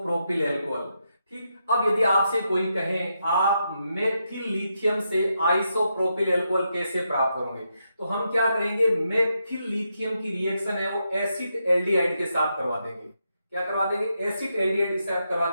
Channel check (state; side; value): inverted; both; correlation -0.83